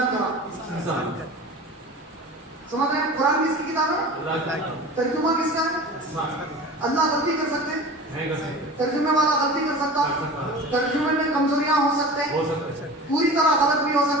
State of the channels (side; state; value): both; normal; correlation 0.36